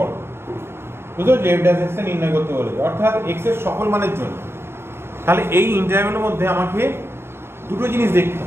বুঝছো? যে f ড্যাশ x এ নির্ণয় করতে বলেছে, অর্থাৎ x এর সকল মানের জন্য। তাহলে এই ইন্টারভ্যালের মধ্যে আমাকে দুটো জিনিস দেখতে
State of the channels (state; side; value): late; left; 0.12 ms